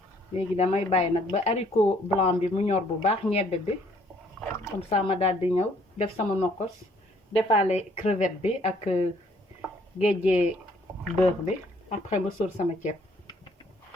léegi damay bàyyi nag ba haricot blanc bi mu ñor bu baax ñebbe bi comme ça ma daal di ñëw def sama nokos defaale crevette bi ak géejee beurre bi après ma sóor sama ceeb.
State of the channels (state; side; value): normal; both; correlation 0.63